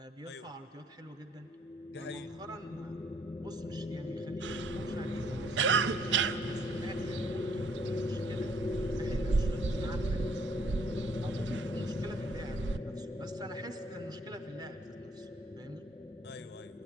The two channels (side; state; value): both; normal; correlation 0.64